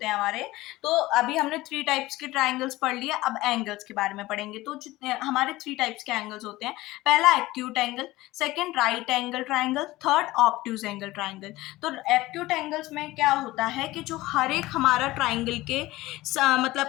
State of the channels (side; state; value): right; quieter; 18.3 dB